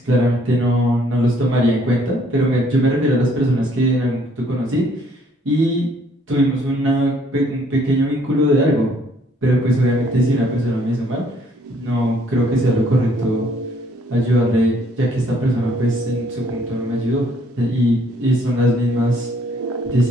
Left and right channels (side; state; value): both; normal; correlation 0.63